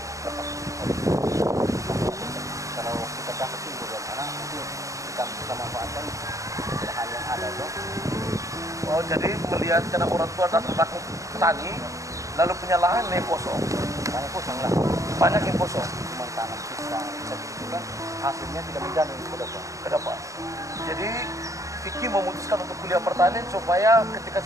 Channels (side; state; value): left; late; 0.16 ms